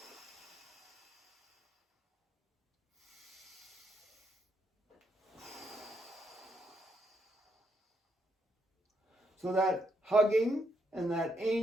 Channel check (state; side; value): normal; both; correlation 0.77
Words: So that hugging and that